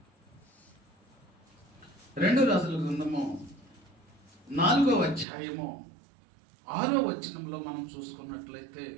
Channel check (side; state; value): left; drops out; at 5.2 s